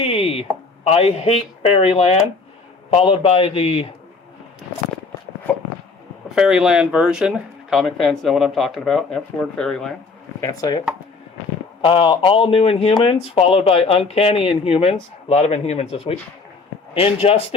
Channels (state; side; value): quieter; right; 4.2 dB